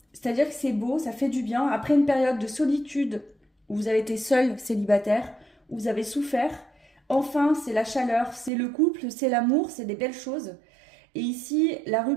C'est-à-dire que c'est beau, ça fait du bien. Après une période de solitude où vous avez été seul, célibataire, où vous avez souffert, enfin, c'est la chaleur, c'est le couple, c'est l'amour, c'est des belles choses. Et ici, la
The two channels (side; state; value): left; drops out; at 8.5 s